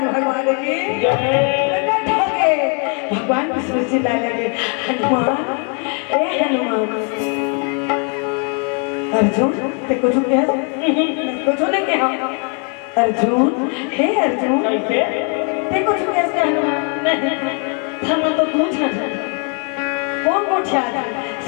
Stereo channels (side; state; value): right; quieter; 38.8 dB